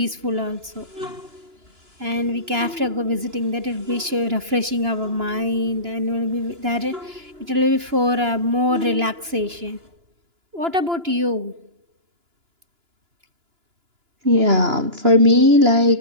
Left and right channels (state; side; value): late; left; 2.9 ms